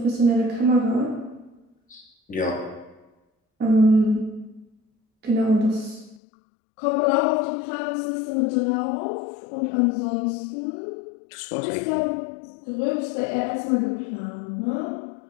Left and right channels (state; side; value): drops out; right; at 6.2 s